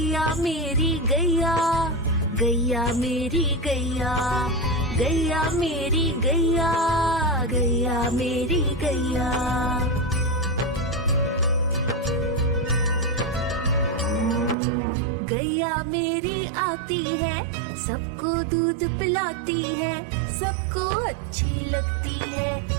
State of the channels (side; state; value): left; drops out; at 14.6 s